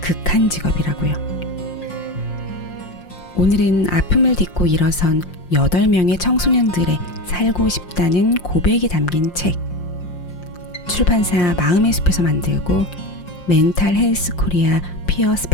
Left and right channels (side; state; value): right; late; 5.7 ms